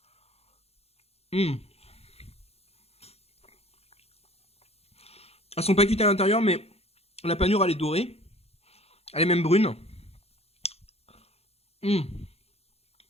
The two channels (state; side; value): late; right; 0.30 ms